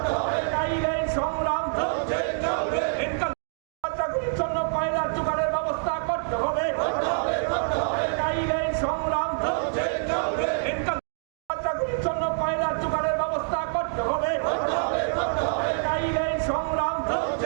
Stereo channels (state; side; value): silent; left; digital silence